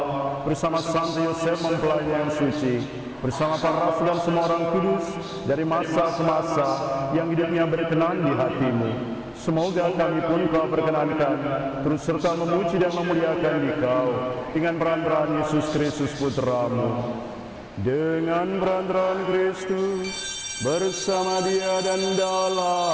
bersama Santo Yosef mempelai yang suci, bersama para rasul dan semua orang kudus, dari masa ke masa, yang hidupnya berkenan di hati-Mu. Semoga kami pun Kau perkenankan, terus serta memuji dan memuliakan Dikau, dengan peran-peran Yesus Kristus Putra-Mu. Dengan peran-peran Kristus, bersama Dia dan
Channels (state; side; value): identical; both; correlation 1.00